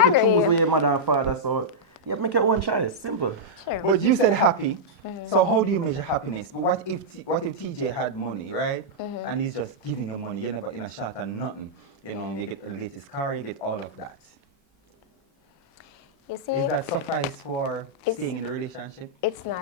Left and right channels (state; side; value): normal; both; correlation -0.09